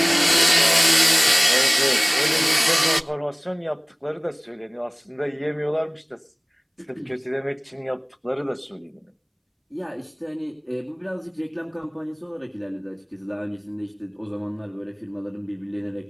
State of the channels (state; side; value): identical; both; correlation 1.00